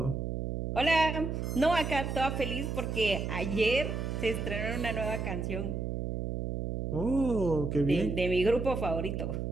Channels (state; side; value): noise; right; hum, 3 dB below the sound